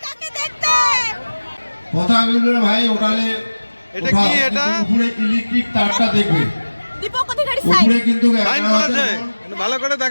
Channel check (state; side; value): inverted; both; correlation -1.00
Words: কথা বলবেন ভাই, ওখানে এটা কি? এটা উপরে ইলেকট্রিক তারটা দেখবে, দীপক অধিকারী সাইন উপরে কিন্তু লাইন করেছে, ভালো করে